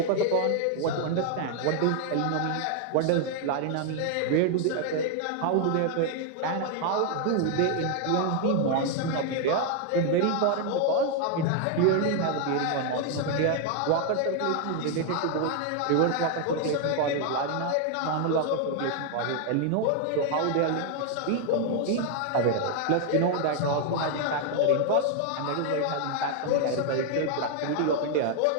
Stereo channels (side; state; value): both; different; correlation 0.00